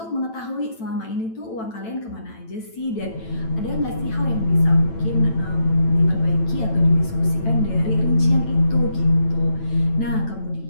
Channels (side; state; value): right; late; 9.0 ms